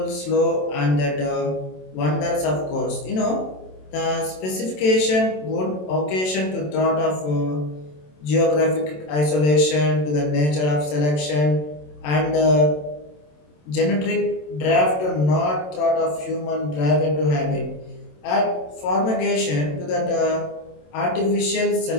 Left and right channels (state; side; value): late; right; 27 ms